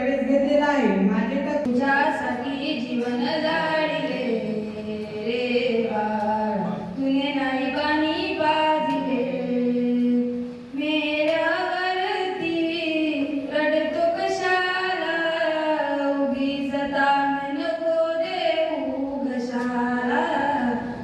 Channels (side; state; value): both; identical; correlation 1.00